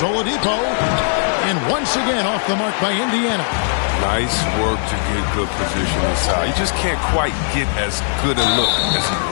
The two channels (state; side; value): silent; right; digital silence